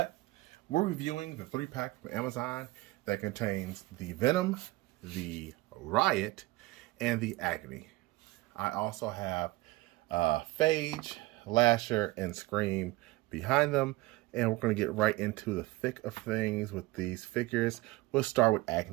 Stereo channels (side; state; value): left; quieter; 20.1 dB